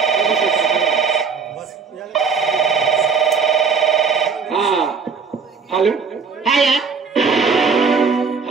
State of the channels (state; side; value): quieter; left; 5.4 dB